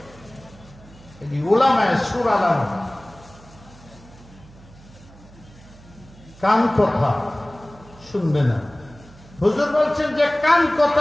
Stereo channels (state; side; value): noise; right; hum, 22 dB below the sound